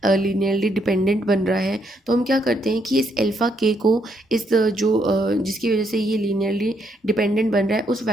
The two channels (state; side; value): normal; both; correlation 0.74